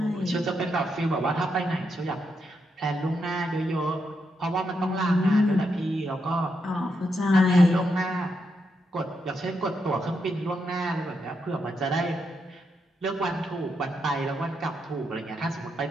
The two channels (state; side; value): normal; both; correlation 0.82